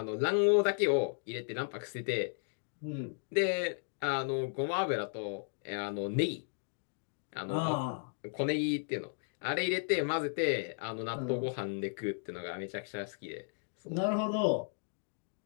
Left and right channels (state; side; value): silent; right; digital silence